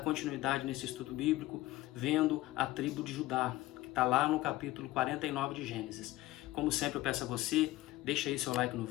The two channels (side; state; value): right; quieter; 17.1 dB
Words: nesse estudo bíblico, vendo a tribo de Judá, que está lá no capítulo 49 de Gênesis. Como sempre eu peço a você, deixa aí seu like no